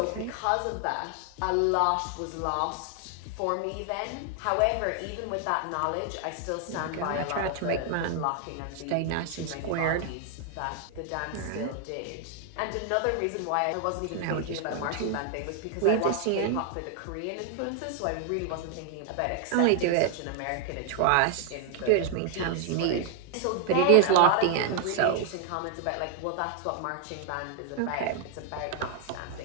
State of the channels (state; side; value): different; both; correlation 0.00